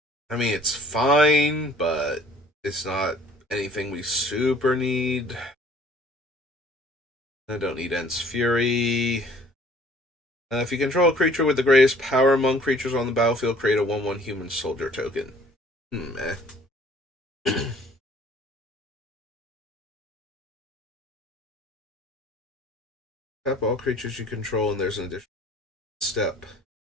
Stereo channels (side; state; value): both; normal; correlation 0.54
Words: I mean, it's fine, but it's not anything we super need. I don't need Ent's Fury. If you control a creature with the greatest power among creatures on the battlefield, create a 1/1 human soldier token. Tap all creatures you control, and there's an additional step.